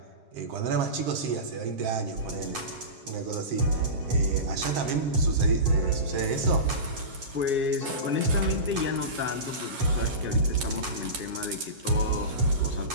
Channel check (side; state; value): left; late; 7.4 ms